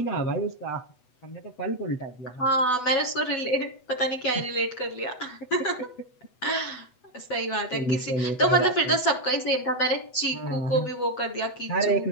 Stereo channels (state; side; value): late; right; 8.0 ms